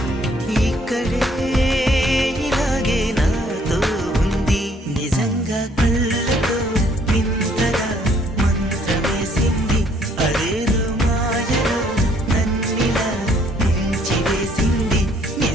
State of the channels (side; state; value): both; normal; correlation 0.64